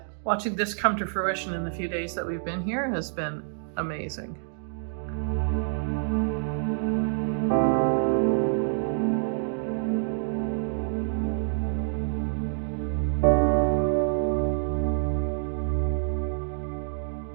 watching this come to fruition in the few days that we've been here has been amazing.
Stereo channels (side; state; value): left; silent; digital silence